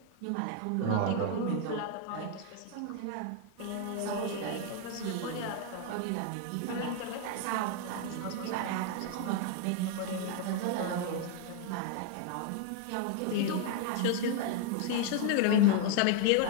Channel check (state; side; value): different; both; correlation 0.00